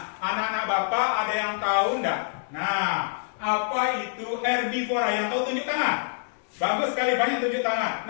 anak-anak Bapak ada yang tahu enggak? Nah, apa itu herbivora? Yang tahu tunjuk tangan. Bagus sekali, banyak tunjuk tangan.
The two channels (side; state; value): right; silent; digital silence